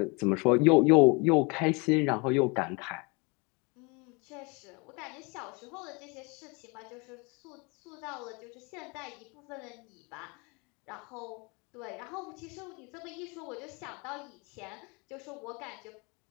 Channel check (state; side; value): quieter; right; 29.5 dB